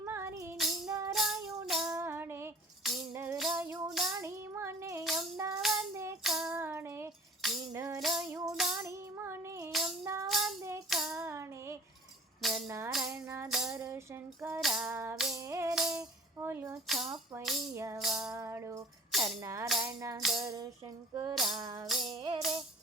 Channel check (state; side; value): normal; both; correlation 0.46